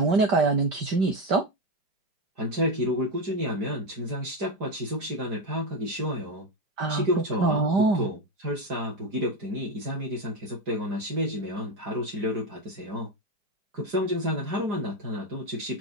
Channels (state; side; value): late; left; 4.9 ms